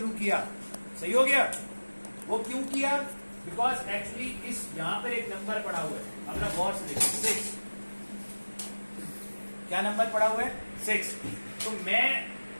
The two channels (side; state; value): both; inverted; correlation -1.00